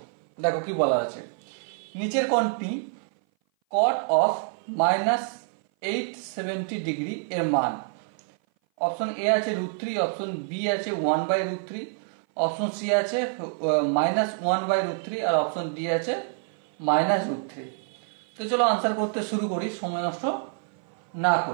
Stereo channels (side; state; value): left; silent; 57 dB below the other